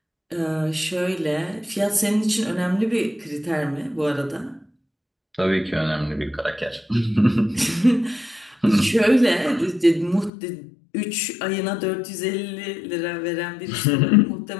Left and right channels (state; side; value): drops out; right; at 10.3 s